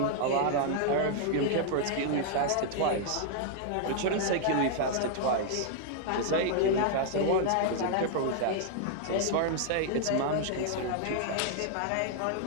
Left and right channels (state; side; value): different; both; correlation -0.01